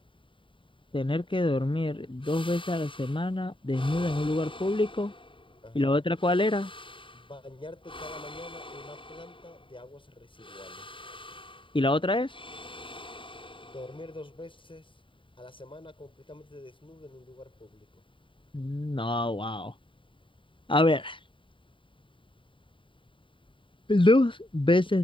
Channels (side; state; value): right; late; 0.25 ms